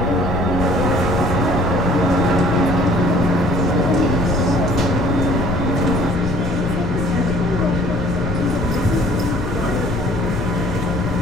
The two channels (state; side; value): noise; left; rumble, 4 dB below the sound